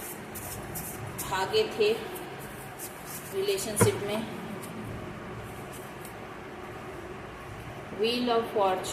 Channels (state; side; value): identical; both; correlation 1.00